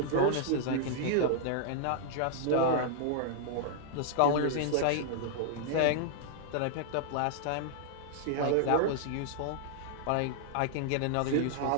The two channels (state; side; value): different; both; correlation -0.01